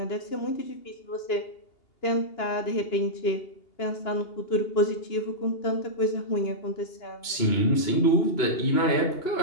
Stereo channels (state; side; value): late; right; 2.8 ms